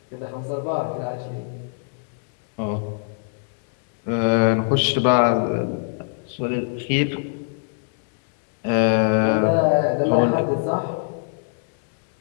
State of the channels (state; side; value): silent; right; digital silence